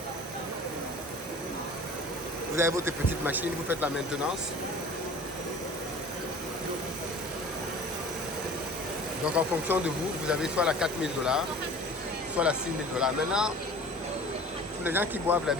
Vous avez votre petite machine, vous faites la maintenance. Donc en fonction de vous, vous avez soit la 4000 $, soit la 6000 $. Maintenant, pour les gens qui boivent la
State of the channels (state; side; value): normal; both; correlation 0.43